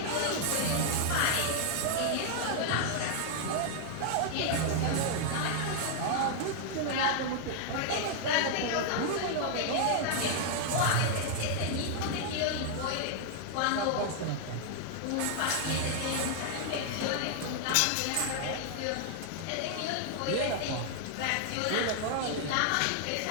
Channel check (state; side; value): different; both; correlation 0.00